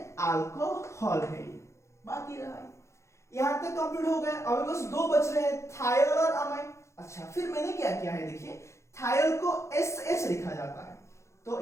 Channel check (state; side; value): late; right; 0.14 ms